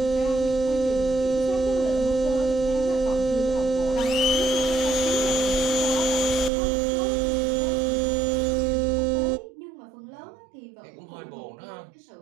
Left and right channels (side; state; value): left; drops out; at 6.5 s